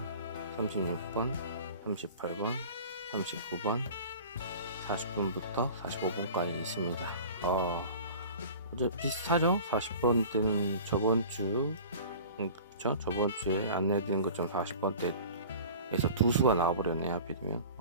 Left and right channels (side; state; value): both; inverted; correlation -0.41